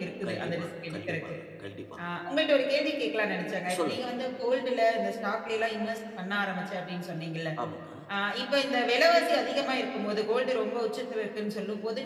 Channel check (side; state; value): both; identical; correlation 1.00